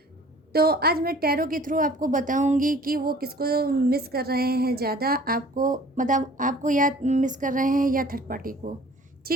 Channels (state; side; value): normal; both; correlation 0.50